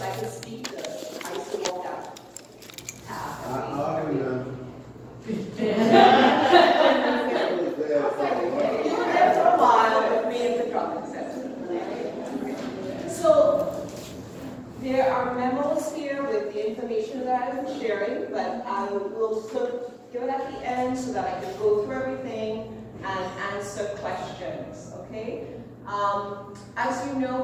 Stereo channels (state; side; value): identical; both; correlation 1.00